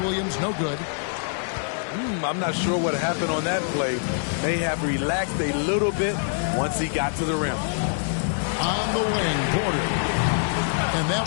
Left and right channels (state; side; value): silent; right; 62 dB below the other